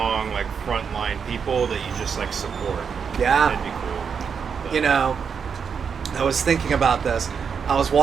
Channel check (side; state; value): left; quieter; 6.5 dB